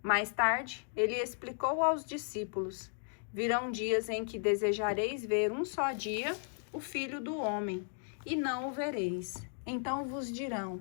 Mais tarde, ele explicou aos discípulos, virão dias em que desejareis ver um só dia o Filho do Homem, e não o vereis. Então vos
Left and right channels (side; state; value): right; silent; 54 dB below the other